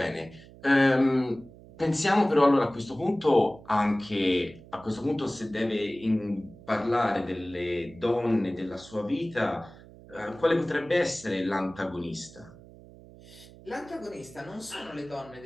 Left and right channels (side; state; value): right; noise; hum, 20 dB below the sound